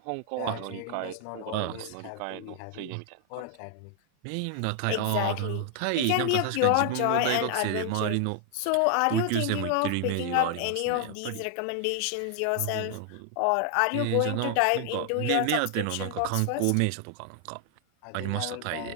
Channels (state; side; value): different; both; correlation 0.00